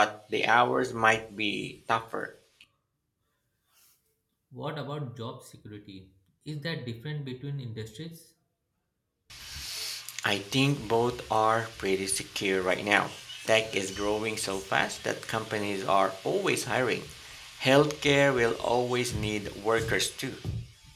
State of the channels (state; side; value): identical; both; correlation 1.00